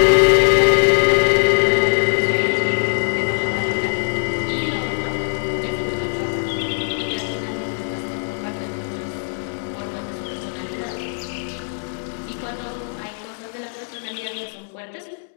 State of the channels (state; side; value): silent; right; 65 dB below the other